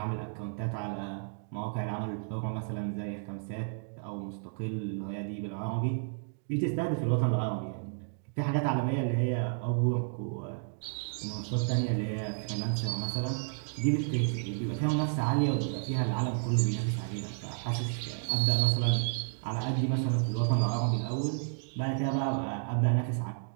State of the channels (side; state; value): left; silent; digital silence